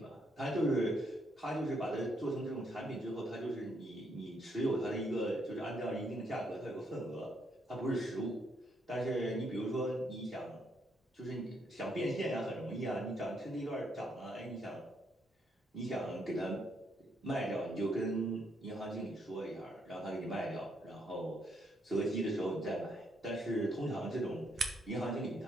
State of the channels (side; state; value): both; normal; correlation 0.74